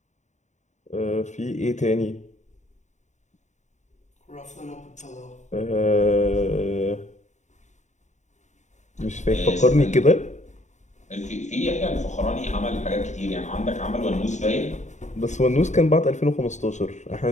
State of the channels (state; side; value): late; right; 0.34 ms